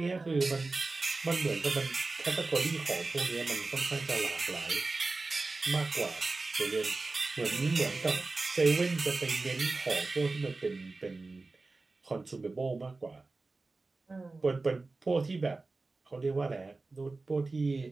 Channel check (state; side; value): quieter; left; 3.5 dB